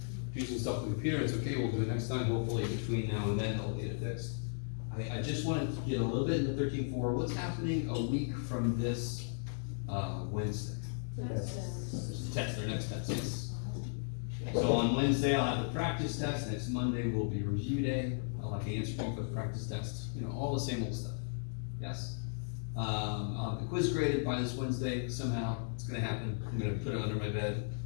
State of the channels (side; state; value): right; silent; digital silence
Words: do some stuff with the computer. It's okay. We'll do it next time. Hopefully between now and then I'll get it fixed. I just wanted to get a little bit into 13.4. What's happening a week from this Wednesday? Test, their next test, yes. So on Wednesday, I'll have the practice test. Next Monday will be review day. I'll have the answer key for the practice test. You know, all the same old stuff. Yes? I'll have the quiz graded by this Wednesday. Somehow, it's gonna happen. I'm gonna put it under my bed,